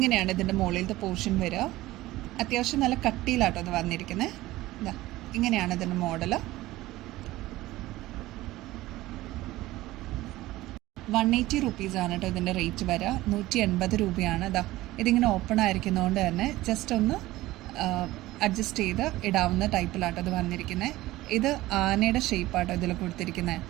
ഇതിന്റെ മുകളിലത്തെ പോർഷൻ വരിക. അത്യാവശ്യം നല്ല കട്ടിയിലാട്ടോ അത് വന്നിരിക്കുന്നത്. ഇതാ ഇങ്ങനെയാണ് ഇതിന്റെ മോഡല്. 180 റുപ്പീസാണ് കേട്ടോ ഇതിൻ്റെ റേറ്റ് വരിക. 180 രൂപയാണ്. ഇതാ ഇതിങ്ങനെ ഓപ്പൺ ആയിരിക്കുന്നതുകൊണ്ട് തന്നെ ജസ്റ്റ് ഒന്ന് അഡ്ജസ്റ്റ് ചെയ്ത് ഇടാവുന്ന ടൈപ്പിലാട്ടോ ഇത് വന്നിരിക്കുന്നത്. ഇത് ആനയുടെ ഷേപ്പാട്ടോ ഇതിൽ കൊടുത്തിരിക്കുന്നത്.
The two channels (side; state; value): left; quieter; 17.4 dB